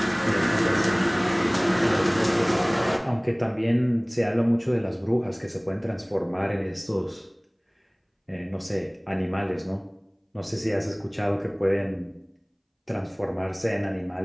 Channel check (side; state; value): both; identical; correlation 1.00